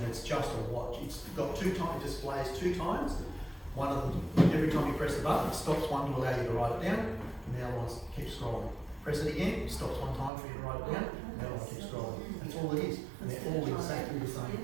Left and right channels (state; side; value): drops out; left; at 10.3 s